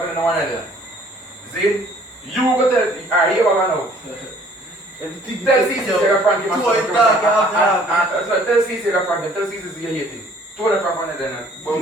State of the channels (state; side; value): normal; both; correlation 0.57